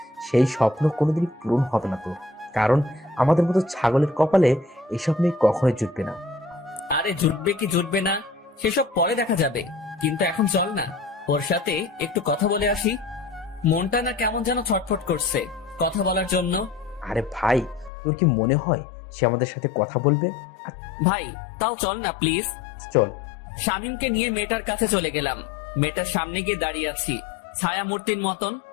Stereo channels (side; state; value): right; drops out; at 17.9 s